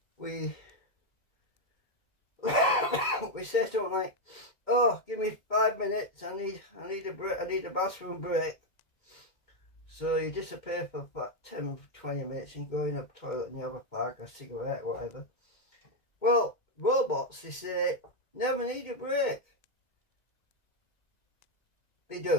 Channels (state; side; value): late; right; 2.1 ms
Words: We we say something like, oh, give me 5 minutes, I need a break, I need a bathroom break. So you disappear for about 10-20 minutes and go in a toilet and you have a fag, a cigarette, whatever. Well, robots, they say, never need a break. They